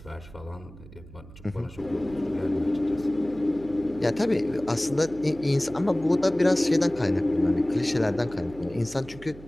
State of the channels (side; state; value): right; noise; hum, 18 dB below the sound